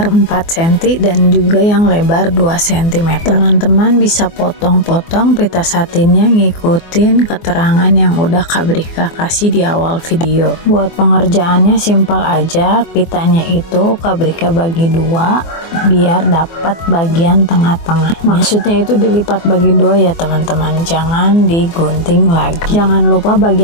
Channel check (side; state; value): right; late; 24 ms